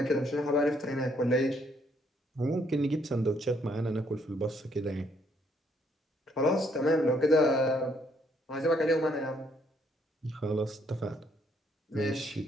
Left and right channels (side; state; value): both; normal; correlation 0.70